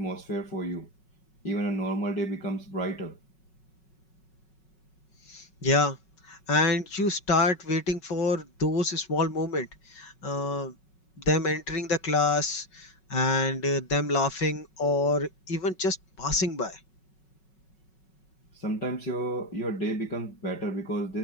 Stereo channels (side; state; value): right; late; 5.4 ms